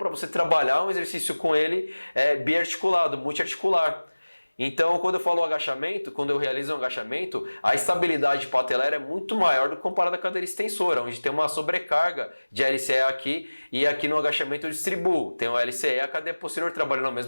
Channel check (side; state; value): both; inverted; correlation -1.00